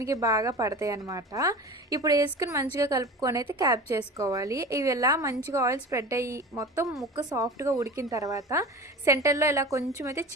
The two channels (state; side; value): normal; both; correlation 0.34